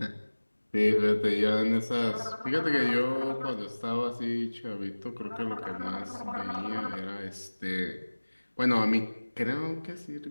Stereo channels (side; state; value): both; inverted; correlation -1.00